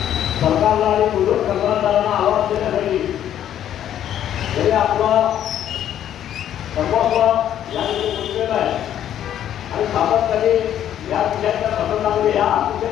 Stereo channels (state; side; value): quieter; right; 10.7 dB